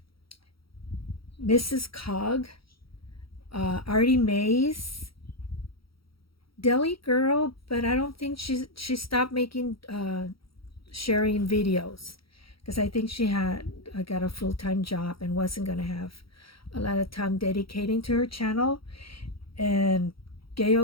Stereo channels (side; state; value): right; late; 0.75 ms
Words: Mrs. Cog, Artie Mays, Deli Girl, but I don't think she stopped making sharing videos because I think she had got a full-time job and wasn't going to have a lot of time dedicating to her channel. And